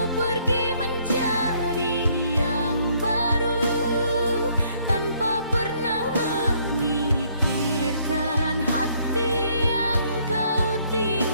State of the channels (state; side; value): inverted; both; correlation -0.66